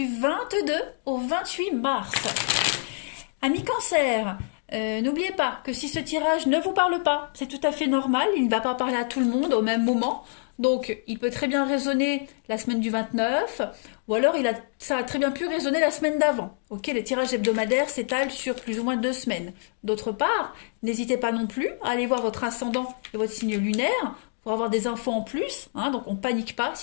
22 au 28 mars. Amis cancers, n'oubliez pas que si ce tirage ne vous parle pas, c'est tout à fait normal, il ne va pas parler à tout le monde au même moment. Donc il peut très bien résonner la semaine du 29, ou alors ça a très bien pu résonner la semaine d'avant. Ok, les tirages hebdomadaires s'étalent sur plus ou moins 2 semaines. D'autre part, n'hésitez pas non plus à aller voir votre ascendant et votre signe lunaire pour avoir des infos en plus, hein, donc on panique pas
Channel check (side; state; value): right; silent; digital silence